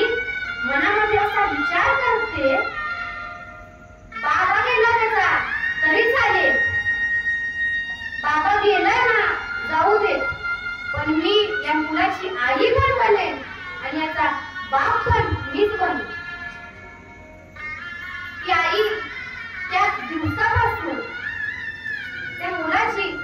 मनामध्ये असा विचार करते, बाबा गेला त्याचा तरी चालेल, बाबा गेला ना जाऊ दे, पण मी या मुलाची आई पण बनेन आणि याचा बाप पण मीच बनू. ती आई त्या दिवसापासून त्या मुलाची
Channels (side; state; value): both; identical; correlation 1.00